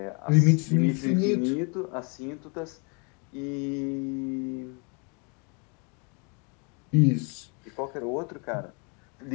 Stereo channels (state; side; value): quieter; right; 34.2 dB